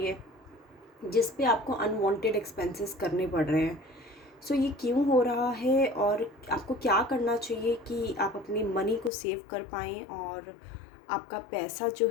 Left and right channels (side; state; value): right; drops out; at 9.1 s